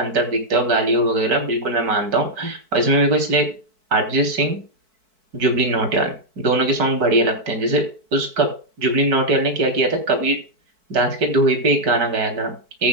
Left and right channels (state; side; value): late; left; 4.6 ms